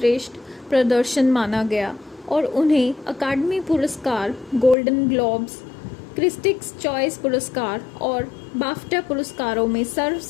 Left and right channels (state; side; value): drops out; right; at 4.8 s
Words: प्रदर्शन माना गया और उन्हें अकादमी पुरस्कार, गोल्डन ग्लोब्स, क्रिटिक्स चॉइस पुरस्कार और बाफ्टा पुरस्कारों में